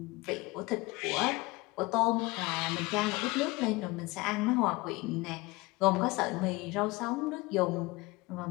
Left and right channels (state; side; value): quieter; right; 22.8 dB